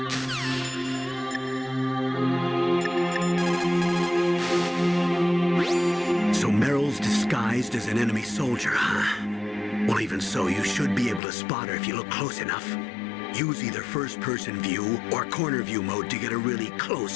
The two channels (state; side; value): drops out; right; at 11.2 s